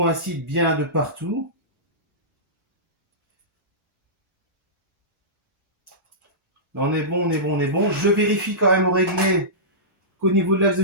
bien de partout. Là, on est bon, on est bon, on est bon. Je vérifie quand même au réglé qu'au niveau de l'axe de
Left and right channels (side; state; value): both; normal; correlation -0.18